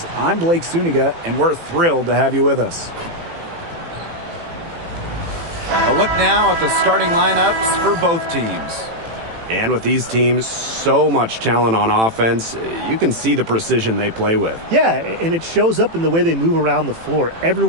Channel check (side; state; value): left; late; 18 ms